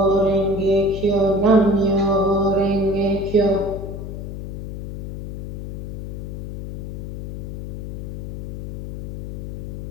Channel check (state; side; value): noise; left; hum, 6 dB below the sound